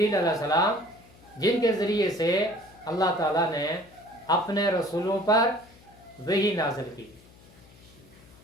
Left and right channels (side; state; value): left; noise; hum, 25 dB below the sound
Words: علیہ السلام، جن کے ذریعے سے اللہ تعالیٰ نے اپنے رسولوں پر وحی نازل کی۔